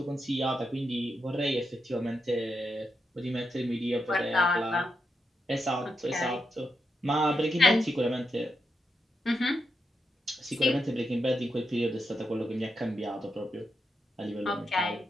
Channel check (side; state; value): both; normal; correlation 0.85